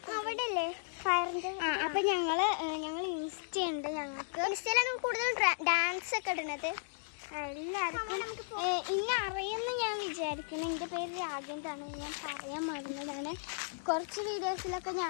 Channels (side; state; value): right; silent; digital silence